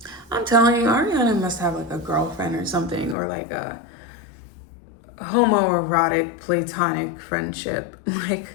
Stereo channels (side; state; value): right; drops out; at 3.2 s